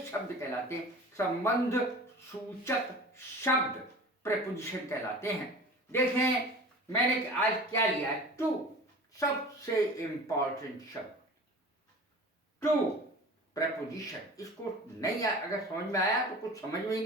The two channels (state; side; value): normal; both; correlation 0.39